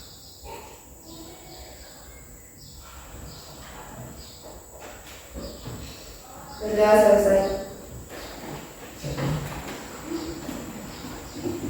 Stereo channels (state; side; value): identical; both; correlation 1.00